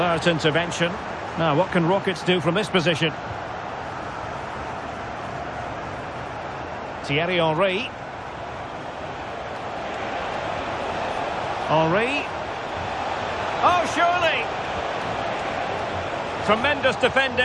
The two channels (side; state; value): both; identical; correlation 1.00